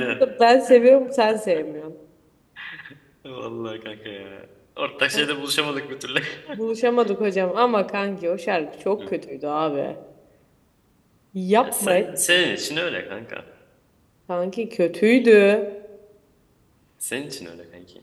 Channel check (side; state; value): both; identical; correlation 1.00